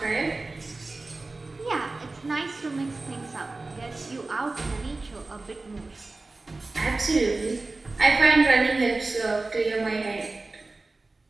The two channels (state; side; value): quieter; left; 3.3 dB